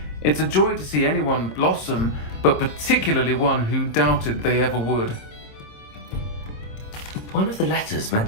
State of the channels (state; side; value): late; right; 26 ms